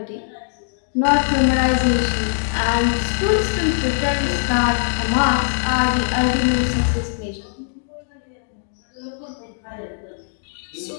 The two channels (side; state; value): right; silent; digital silence